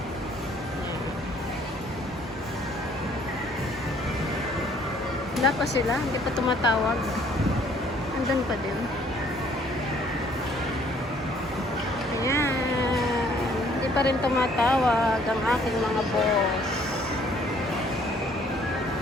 Wala pa sila, hindi pa tumatawag. Andun pa din. Ayan. Hindi pa rin tumatawag ang aking mga boss.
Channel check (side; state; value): both; normal; correlation 0.61